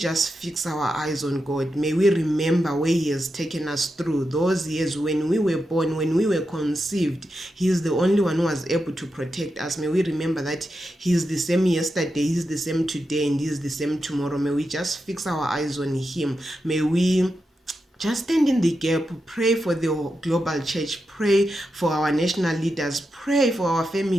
fix our eyes on God. May we remember where He has taken us through those years when we were born, when we were conceived. He is the only one who was able to protect us. May we remember that He is the same yesterday, He is the same today, and He is the same tomorrow. May we just fix our eyes on Him. May we just stand in the gap, pray for the global church, pray for our national leaders, pray for our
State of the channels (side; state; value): both; normal; correlation 0.88